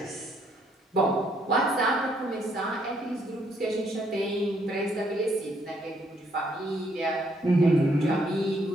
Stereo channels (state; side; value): normal; both; correlation 0.70